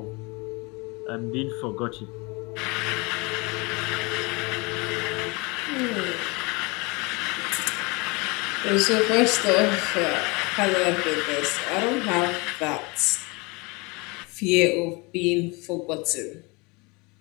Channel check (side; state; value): right; quieter; 27.2 dB